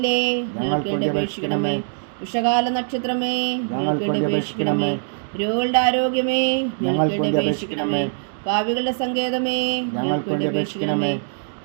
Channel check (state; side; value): silent; left; digital silence